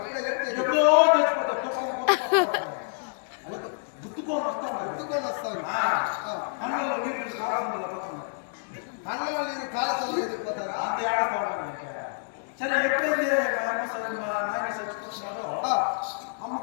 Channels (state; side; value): silent; right; digital silence